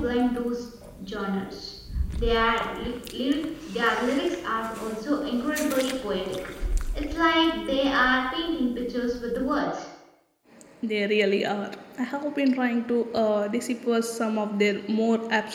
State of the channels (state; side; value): identical; both; correlation 1.00